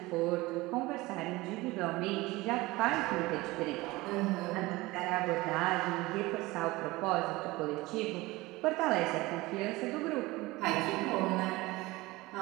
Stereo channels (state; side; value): quieter; left; 20.7 dB